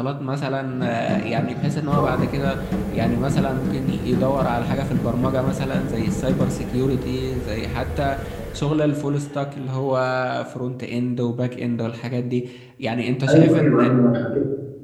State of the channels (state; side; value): identical; both; correlation 1.00